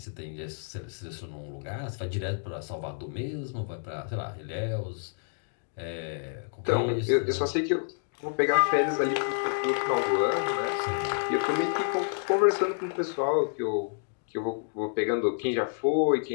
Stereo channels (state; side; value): silent; right; digital silence